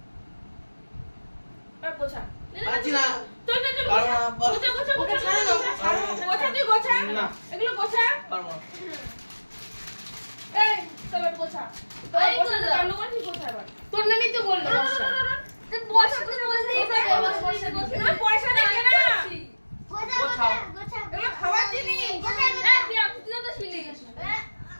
আর গোছা। পারছি না। চল চল চল পারবো না, পারবো গোছা গোছা গোছা ছাড়ো না, ছাড়ো না। গোছা তুই গোছা না। এগুলো গোছা। পারবো না। এই চল গোছা এই গোছা গোছা। কান্ড করছিস গোছা এবার। তোর নামই তো বললো বর্ষা। তুই বসে তুই বসে এগুলো পয়সা দেখে না গোছাও গোছাও এগুলো খাওয়ার জিনিস। তুই তো ছিলি।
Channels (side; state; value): both; inverted; correlation -1.00